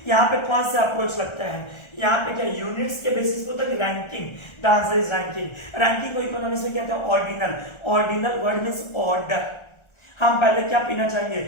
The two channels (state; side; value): late; right; 1.4 ms